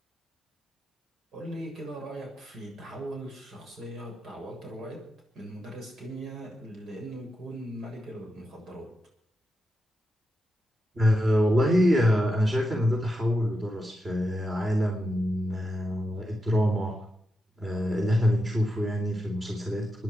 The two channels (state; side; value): normal; both; correlation 0.87